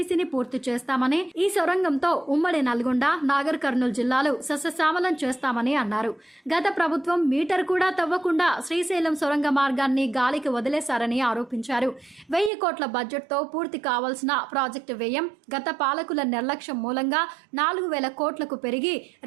పూర్తి చేస్తామని, ఈ సొరంగంతో ఉమ్మడి నల్గొండ, నాగర్ కర్నూలు జిల్లాలు సస్యశ్యామలం చేస్తామని అన్నారు. గత ప్రభుత్వం మీటర్ కూడా తవ్వకుండా శ్రీశైలం సొరంగ మార్గాన్ని గాలికి వదిలేశారని ఆరోపించారు. 1000 కోట్ల బడ్జెట్తో పూర్తి కావాల్సిన ప్రాజెక్టు వ్యయం గత పాలకుల నిర్లక్ష్యం మూలంగా 4000 కోట్లకు పెరిగి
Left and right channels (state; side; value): drops out; left; at 12.5 s